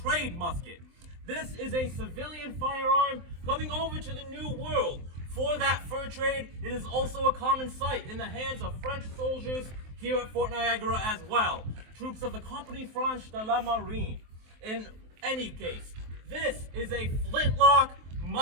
musket. This is a civilian firearm coming over to the New World. For that fur trade, it is also a common sight in the hands of French soldiers here at Fort Niagara as well. Troops of the Compagnie Franche de la Marine. In any case, this is a flintlock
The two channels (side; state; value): left; late; 23 ms